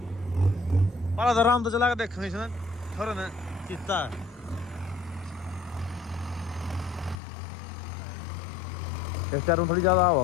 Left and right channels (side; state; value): right; drops out; at 7.2 s